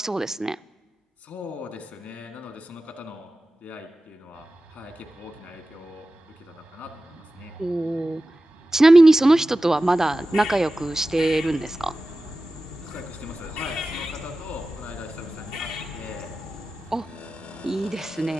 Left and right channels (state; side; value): normal; both; correlation 0.95